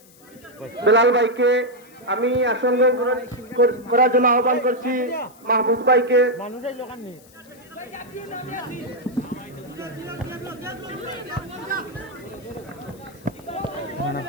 বেলাল ভাইকে, আমি আসন গ্রহণ করার জন্য আহ্বান করছি মাহবুব ভাইকে।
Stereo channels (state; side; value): noise; left; hiss, 26 dB below the sound